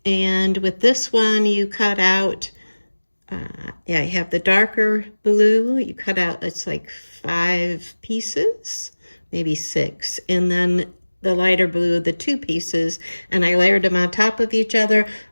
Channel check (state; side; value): inverted; both; correlation -1.00